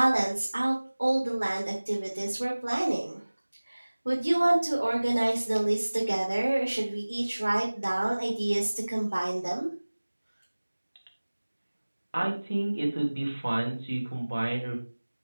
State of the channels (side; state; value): both; inverted; correlation -1.00